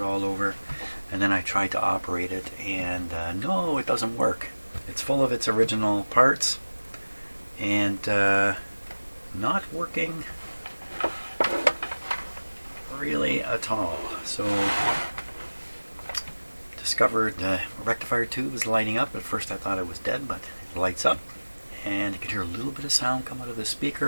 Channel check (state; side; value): inverted; both; correlation -1.00